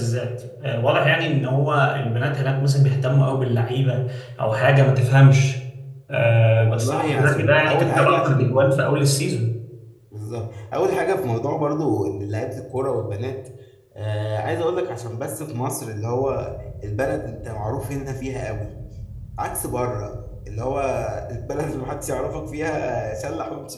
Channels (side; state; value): both; identical; correlation 1.00